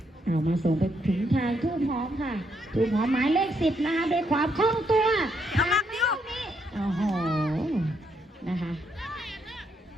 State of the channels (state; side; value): normal; both; correlation 0.76